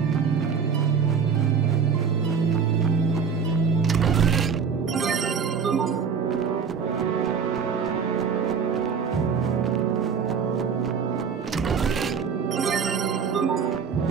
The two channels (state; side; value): quieter; left; 6.3 dB